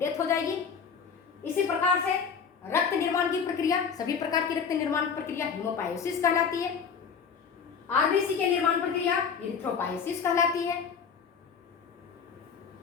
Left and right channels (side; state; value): right; quieter; 6.4 dB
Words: हो जाएगी। इसी प्रकार से रक्त निर्माण की प्रक्रिया, सभी प्रकार की रक्त निर्माण प्रक्रिया हीमोपायोसिस कहलाती है। आरबीसी के निर्माण प्रक्रिया इरिथ्रोपायोसिस कहलाती है।